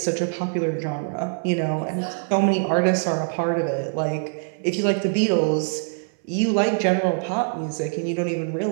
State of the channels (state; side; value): silent; left; 59 dB below the other